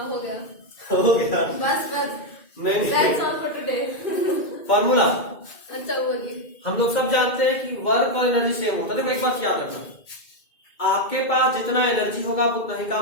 हो गया बस नहीं that's all for today. Formula अच्छा होगी, हम लोग सब जानते हैं कि वर्क और एनर्जी सेम होता है। देखो एक बात याद रखना, आपके पास जितना एनर्जी होगा आप उतना ही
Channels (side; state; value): right; late; 2.2 ms